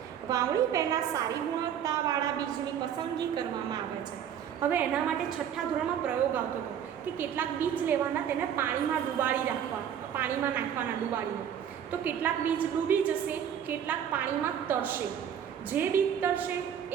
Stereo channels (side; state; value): left; quieter; 9.0 dB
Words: વાવણી પહેલાં સારી ગુણવત્તાવાળા બીજની પસંદગી કરવામાં આવે છે. હવે એના માટે 6થા ધોરણમાં પ્રયોગ આવતો હતો કે કેટલાક બીજ લેવાના, તેને પાણીમાં ડુબાડી રાખવા, પાણીમાં નાખવાના ડુબાડીને. તો કેટલાક બીજ ડૂબી જશે, કેટલાક પાણીમાં તરશે. જે બીજ તરશે